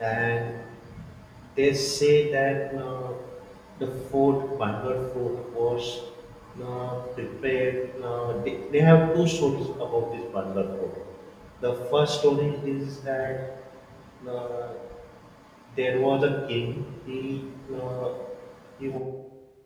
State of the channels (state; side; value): identical; both; correlation 1.00